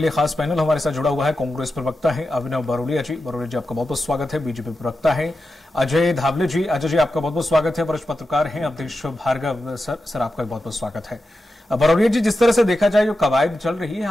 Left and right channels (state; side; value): normal; both; correlation 0.90